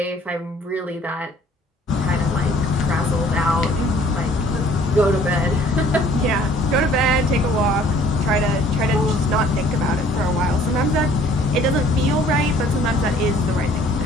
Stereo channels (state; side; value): normal; both; correlation 0.55